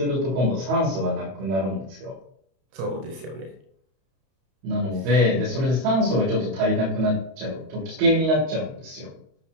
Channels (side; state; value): left; late; 31 ms